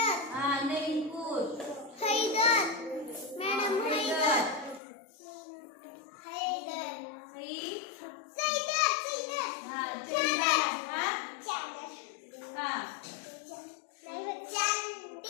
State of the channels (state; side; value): drops out; right; at 4.8 s